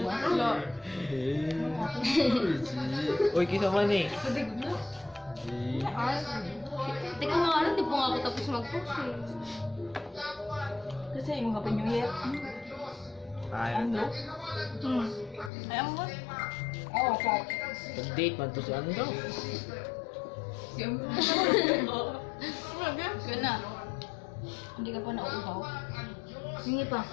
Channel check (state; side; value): drops out; right; at 15.5 s